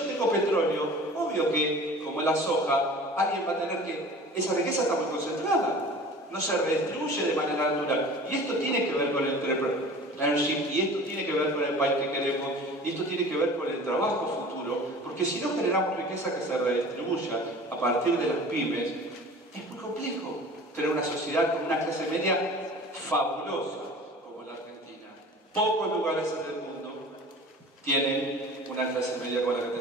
tengo petróleo, obvio que, como la soja, alguien va a tener que... Esa riqueza está muy concentrada, no se redistribuye de manera natural. Y esto tiene que ver con el entrepreneurship, y esto tiene que ver con el país que queremos, y esto tiene que ver con el trabajo futuro. futuro, porque si no generamos riqueza que se redistribuya a partir de las pymes, es muy complejo tener una sociedad con una clase media fabulosa como la Argentina. Pocos lugares en el mundo tienen una clase media como la que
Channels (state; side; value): normal; both; correlation 0.42